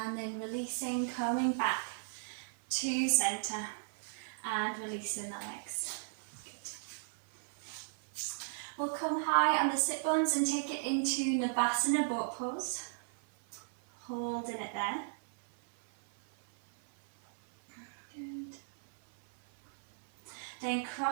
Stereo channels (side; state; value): left; silent; 54 dB below the other